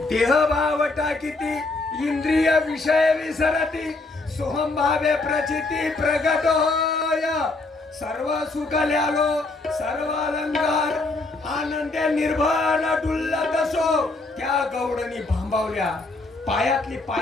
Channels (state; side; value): quieter; right; 3.3 dB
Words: देह भावटा किती इंद्रिय विषय विसरती, सोहम भावे प्रचिती प्रगट होय. सर्व सुख ल्यालो सर्व अलंकार, आनंदे निर्भर डुल्लत असो. त्या गौडणी भांबावल्या, पायातली